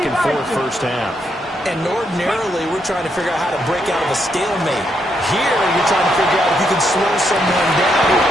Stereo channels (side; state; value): both; normal; correlation 0.78